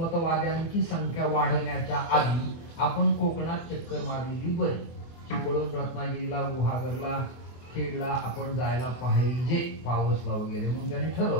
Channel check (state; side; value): late; right; 24 ms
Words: संख्या वाढण्याच्या आधी आपण कोकणात चक्कर मारलेली बरी. चिपळूण, रत्नागिरीला, गुहागरला, खेडला आपण जायला पाहिजे पावसला वगैरे म्हणून त्याने